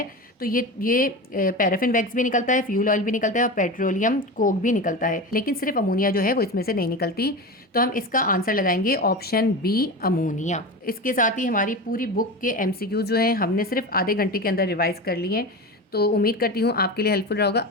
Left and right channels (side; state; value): both; normal; correlation 0.26